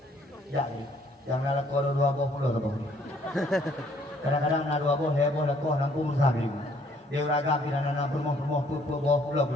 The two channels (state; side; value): normal; both; correlation 0.63